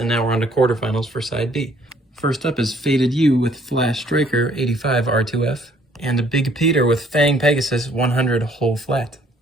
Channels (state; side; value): normal; both; correlation 0.61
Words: now we're on to quarterfinals for side B. First up is Faded You with Flash Striker 85 R2F, and a Big Peter with Fang Pegasus 100 whole flat.